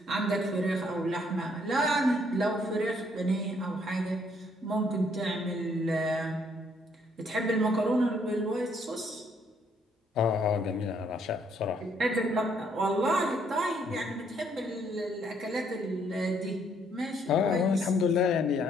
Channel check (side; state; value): both; normal; correlation 0.68